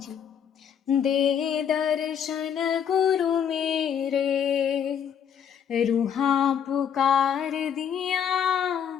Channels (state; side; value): quieter; right; 8.3 dB